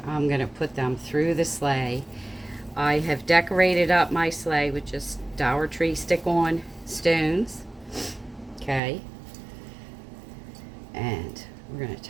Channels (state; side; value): drops out; left; at 8.8 s